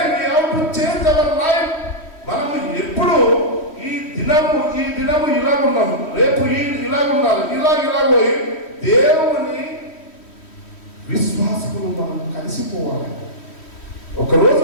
we have to change our life. మనము ఎప్పుడు ఈ దినము ఇలాగున్నాము, రేపు ఇలాగున్నారు, ఇలాగోయి దేవుని విశ్వాసకులు మనం కలిసిపోవాలి. ఒకరోజు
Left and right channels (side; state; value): right; late; 3.1 ms